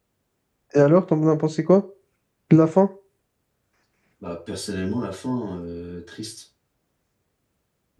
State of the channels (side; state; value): both; identical; correlation 1.00